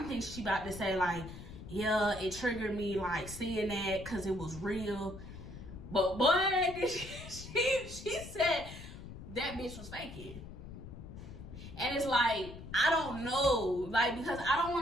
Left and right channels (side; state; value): left; noise; rumble, 12 dB below the sound